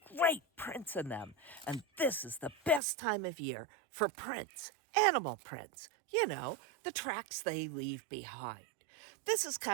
great prints in them, and this is the best time of year for prints, animal prints. You know, the tracks they leave behind. This is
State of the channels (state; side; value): drops out; left; at 2.8 s